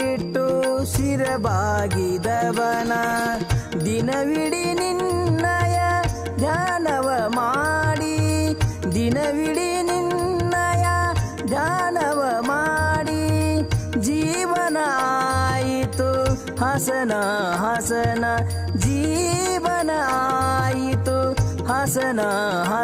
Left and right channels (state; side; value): identical; both; correlation 1.00